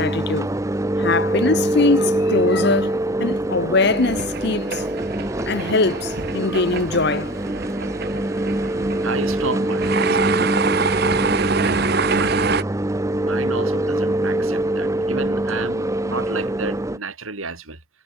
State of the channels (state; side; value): normal; both; correlation 0.41